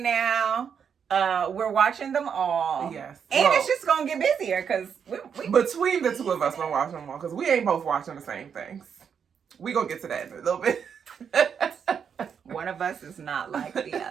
now. We're watching them all. Yes. And it's just going to get busier because we between the two of us, we're watching them all because we ain't both watching the same things. We going to get to that in a little bit. One of us is not like the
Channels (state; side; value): quieter; left; 7.2 dB